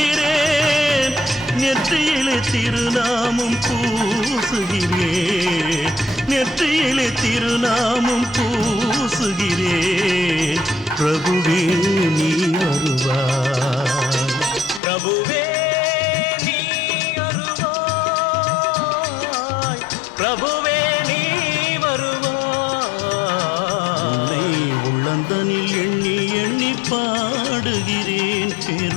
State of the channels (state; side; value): drops out; right; at 14.8 s